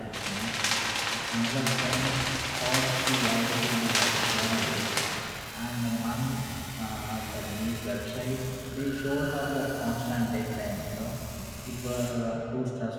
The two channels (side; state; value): both; identical; correlation 1.00